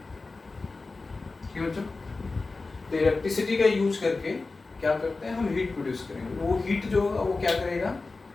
ठीक है बच्चों, तो इलेक्ट्रिसिटी का यूज करके क्या करते हैं हम, हीट प्रोड्यूस करेंगे। वो हीट जो होगा वो क्या करेगा,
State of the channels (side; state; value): right; quieter; 3.7 dB